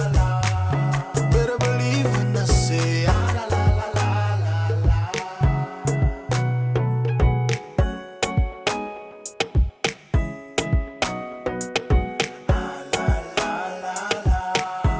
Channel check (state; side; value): identical; both; correlation 1.00